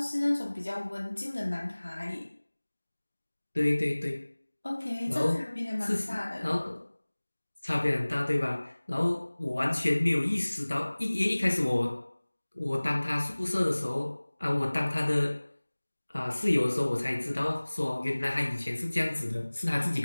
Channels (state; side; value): inverted; both; correlation -1.00